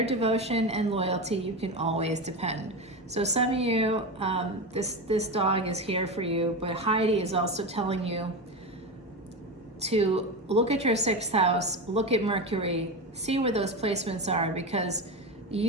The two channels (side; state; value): both; normal; correlation 0.20